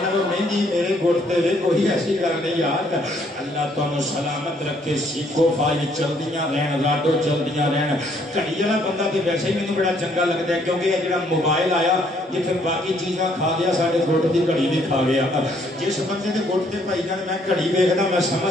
نال مہندی میرے گھٹ تے کوئی ایسی گل نہیں یار اللہ تانوں سلامت رکھے سیکھو فائل چلدیاں رہن راڈو چلدیاں رہن کڑی والا بندہ تے ویسے ہی مینوں بڑا چنگا لگتا ہے کیونکہ یہ جڑا موبائل آیا یہ پھر باقی چیزاں کھا گیا ساڈے گھٹ دی گھڑی بھی کھا گیا جس بندے دے گھٹ تے بھائی جان میں گھڑی ویکھدا میں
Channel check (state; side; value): normal; both; correlation 0.67